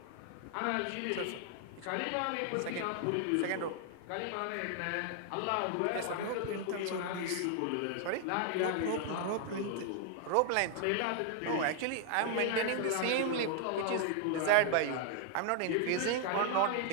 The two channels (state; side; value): different; both; correlation 0.00